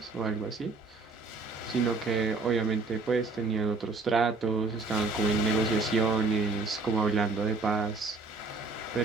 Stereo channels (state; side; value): quieter; left; 3.9 dB